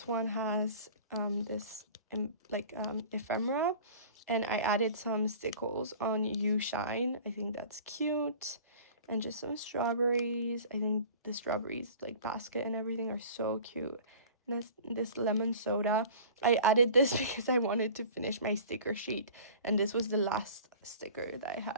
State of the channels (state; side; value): inverted; both; correlation -0.42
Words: one has this ephemera. And I added some stickles on You Shine. I think that's cute. And just some strawberries. I think the strawberries, like basket and everything, are so cute. And this lemon soda. I added this because I wanted to finish my sticker sheet. And this was the last sticker that I